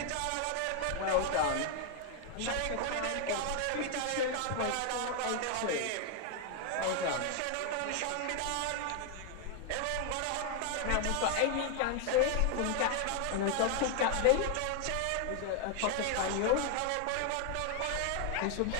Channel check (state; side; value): different; both; correlation 0.00